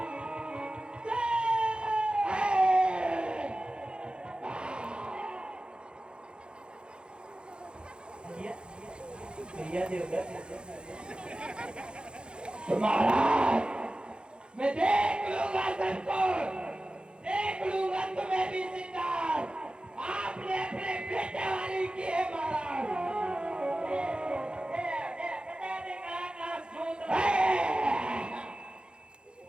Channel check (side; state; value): left; late; 0.052 ms